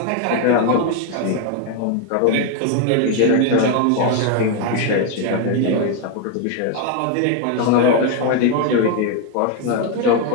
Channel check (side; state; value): both; different; correlation 0.01